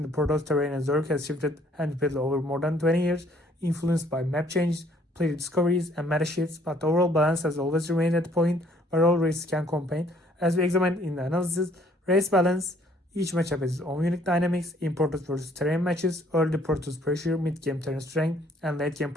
the Protoss, terrain, and Zerg has shifted and repeatedly over more than 20 years, influenced by map changes, player discoveries, and meta shifts, but the overall balance has always remained at the point where all races can compete. As we examined in the analysis, race balance, each matchup has its own unique dynamics, in Protoss versus terrain matches, early Protoss pressure, mid-game terrain strength, and late-game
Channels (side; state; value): both; normal; correlation 0.62